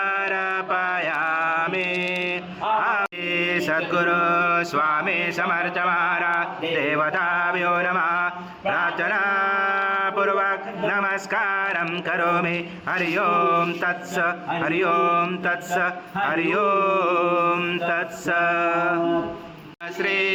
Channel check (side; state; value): both; identical; correlation 1.00